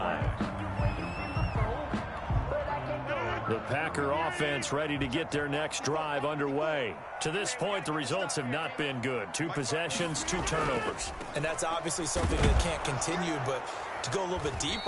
The Packer offense ready to get their next drive underway. To this point, the results have not been good. 2 possessions, 2 turnovers. And that's obviously something that can't continue, but to go a little bit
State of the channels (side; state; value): both; identical; correlation 1.00